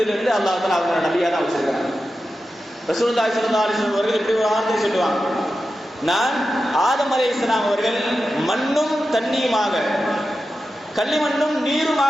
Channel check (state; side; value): normal; both; correlation 0.91